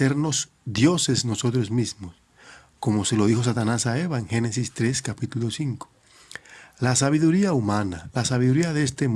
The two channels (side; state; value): both; identical; correlation 1.00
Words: dioses nosotros mismos, como se lo dijo Satanás a Eva en Génesis 3, capítulo 5. La sabiduría humana, la sabiduría de este